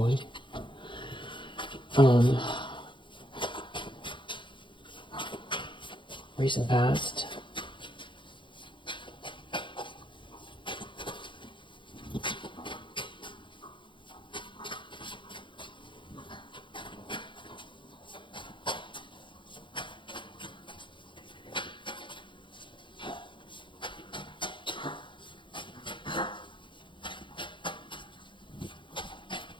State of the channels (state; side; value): late; right; 0.23 ms